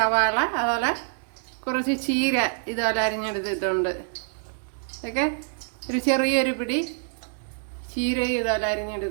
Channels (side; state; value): left; silent; digital silence